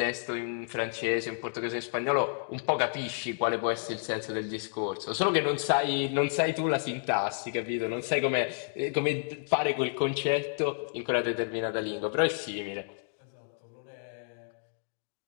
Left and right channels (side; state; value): right; silent; digital silence